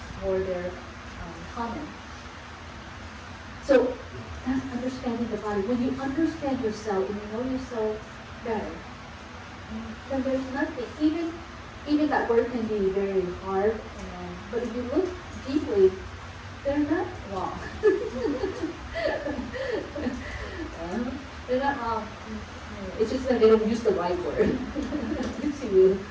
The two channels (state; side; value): identical; both; correlation 1.00